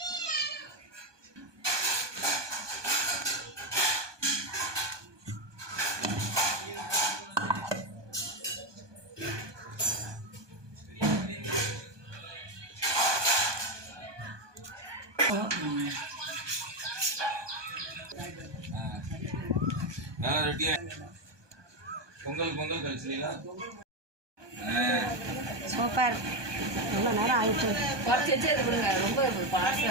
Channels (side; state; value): left; late; 1.2 ms